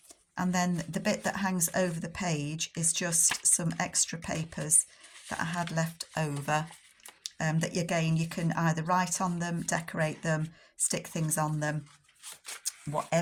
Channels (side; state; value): both; identical; correlation 1.00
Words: And then the bit that hangs over the page is just some extra papers that I had left over. that again, you can either write on them, decorate them, stick things on them,